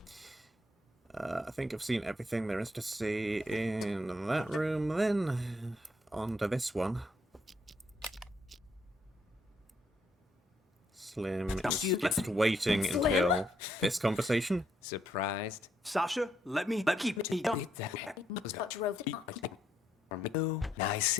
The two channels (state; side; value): normal; both; correlation 0.74